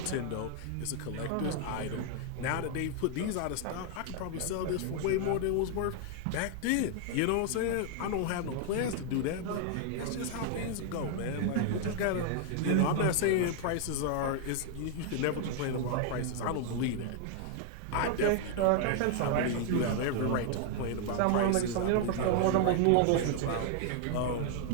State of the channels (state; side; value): different; both; correlation 0.00